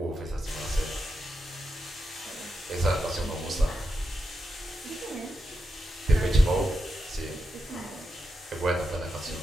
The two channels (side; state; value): both; normal; correlation 0.87